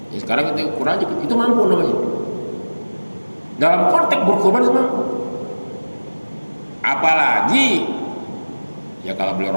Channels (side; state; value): both; inverted; correlation -1.00